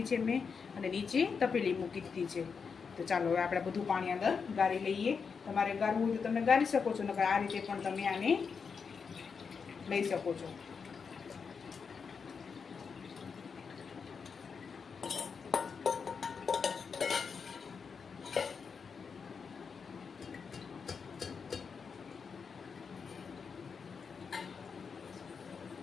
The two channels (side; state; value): right; quieter; 5.8 dB